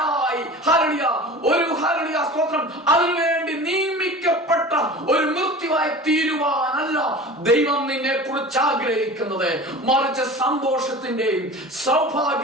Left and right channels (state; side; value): normal; both; correlation 0.37